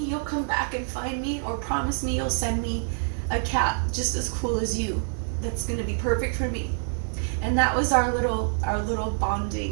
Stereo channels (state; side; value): silent; left; 61 dB below the other